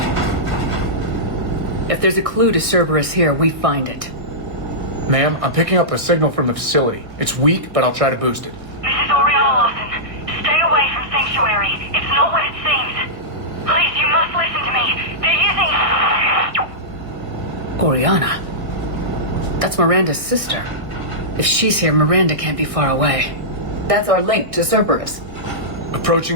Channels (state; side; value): late; left; 1.6 ms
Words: If there's a clue to Cerberus here, we find it. Ma'am, I'm picking up a signal from the facility. It's weak, but I'll try to boost it. This is Oriana Lawson. Stay away from Sanctuary. It's not what it seems. Please, you must listen to me. They're using... Oriana? That's Miranda's sister. If she's here, Miranda can't be far away. That's our link to Cerberus.